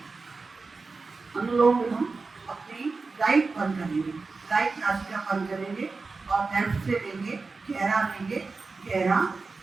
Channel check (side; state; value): left; quieter; 4.1 dB